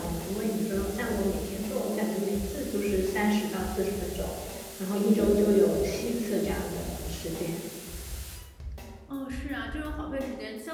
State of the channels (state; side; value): identical; both; correlation 1.00